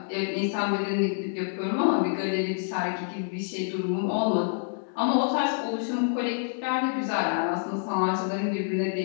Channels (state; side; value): silent; right; digital silence